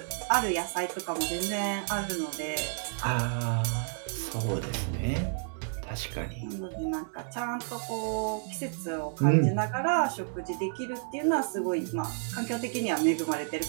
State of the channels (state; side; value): silent; left; 57 dB below the other